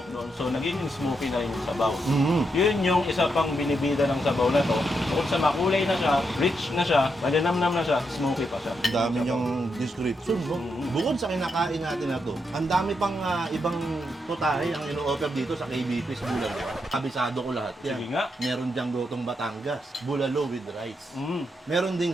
doon. So, nagiging smoky na yung sabaw. Yun yung isa pang binibida ng sabaw na to. Bukod sa makulay na siya, rich na siya, malinamnam na siya, smoky pa siya. Ang dami niyang description, no? Bukod sa kinakain natin na to, ang dami pang ibang putahe ang ino-offer dito sa KBP sa Bulalo. Kabisado ko lahat yan. Sige nga. Meron diyang gotong Batangas, bulalo with rice. Meron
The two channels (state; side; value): normal; both; correlation 0.82